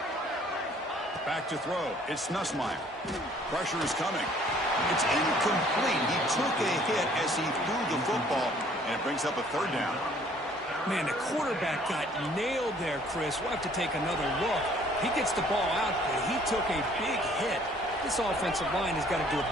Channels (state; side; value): normal; both; correlation 0.58